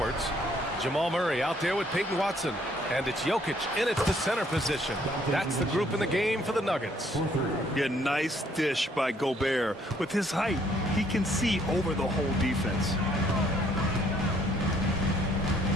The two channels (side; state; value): both; normal; correlation 0.65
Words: Jamal Murray out there with Peyton Watson. And it's Jokic in at the center position. That's the group in the game for the Nuggets. Yeah, nice dish by Gobert. With his height, he can see over the whole defense.